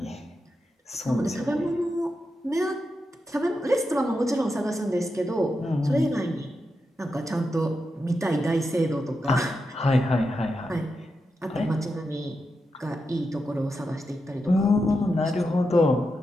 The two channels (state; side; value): normal; both; correlation 0.87